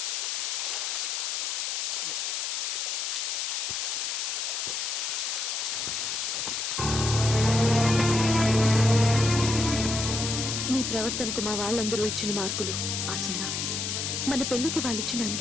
నీ ప్రవర్తనకు మా వాళ్ళందరూ ఇచ్చిన మార్కులు ఆ సున్నా, మన పెళ్లికి వాళ్ళిచ్చిన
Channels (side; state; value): left; noise; hiss, 1 dB below the sound